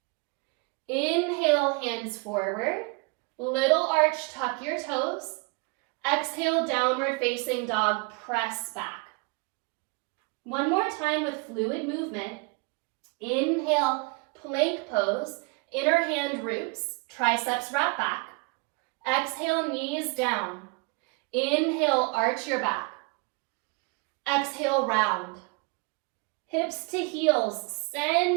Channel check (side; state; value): left; quieter; 30.2 dB